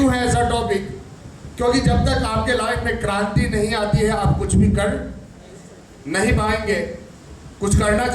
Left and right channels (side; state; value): both; identical; correlation 1.00